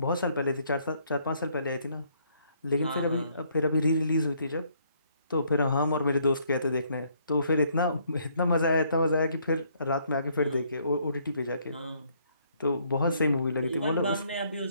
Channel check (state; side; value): inverted; both; correlation -0.67